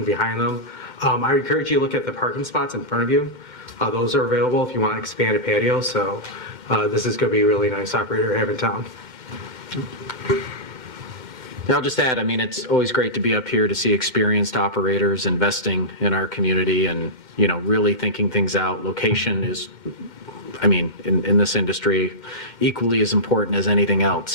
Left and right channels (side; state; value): left; late; 2.1 ms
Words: behind them. I encourage you to look at the parking spots in front of you. Those are available if you want to expand a patio, so this is going to be a really nice operator to have in town. I'll just add, I mean, it's always great to be up here to see experienced operators investing in our community and, really thinking things out. Location is, I mean, in this industry, equally as important as anything